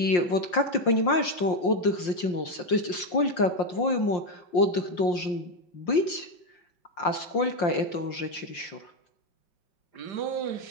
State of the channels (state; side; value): late; right; 5.7 ms